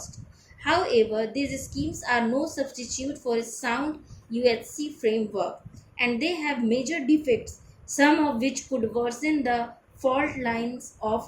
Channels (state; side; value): identical; both; correlation 1.00